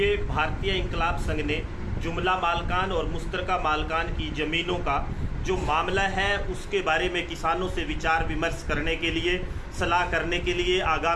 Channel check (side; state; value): both; identical; correlation 1.00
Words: भारतीय इंकलाब संघ ने जुमला मालकान और मुश्तरका मालकान की ज़मीनों का जो मामला है उसके बारे में किसानों से विचार विमर्श करने के लिए, सलाह करने के लिए,